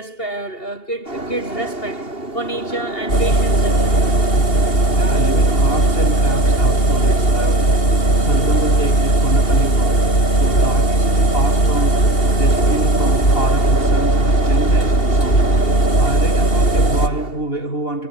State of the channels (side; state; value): right; late; 2.8 ms